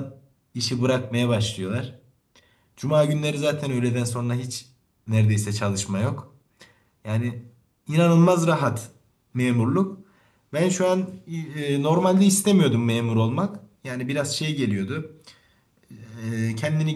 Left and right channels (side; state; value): both; identical; correlation 1.00